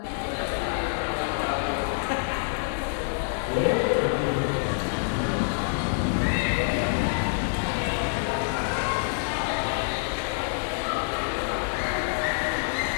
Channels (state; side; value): silent; right; 59 dB below the other